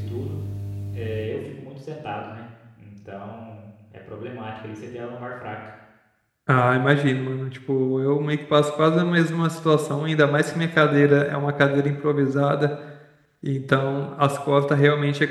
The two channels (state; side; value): identical; both; correlation 1.00